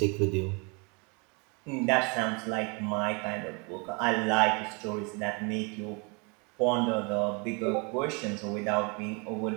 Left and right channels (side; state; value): left; quieter; 31.6 dB